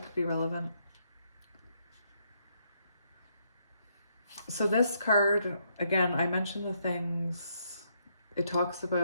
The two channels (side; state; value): both; inverted; correlation -0.74